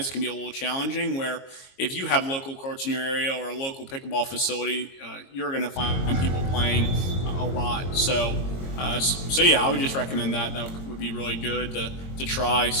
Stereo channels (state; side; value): late; right; 22 ms